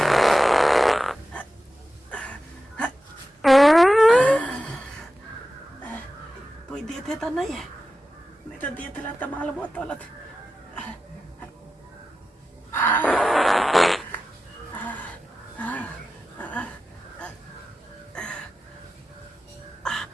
कोई देते तो नहीं है नहीं तो देते ला तो माल बहुत तौलत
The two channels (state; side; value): normal; both; correlation 0.93